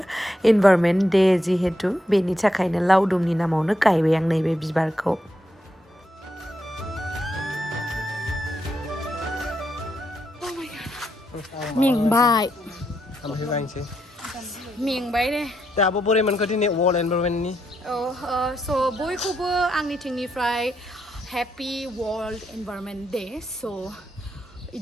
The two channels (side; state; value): both; normal; correlation 0.80